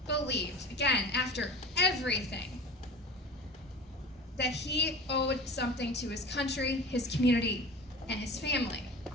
believed, again, after everything, that he owed something to his country, his community, and his family.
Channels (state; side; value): normal; both; correlation 0.37